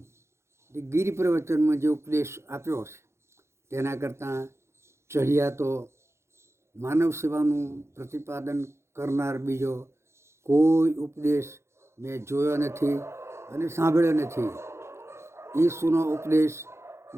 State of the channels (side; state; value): left; late; 0.13 ms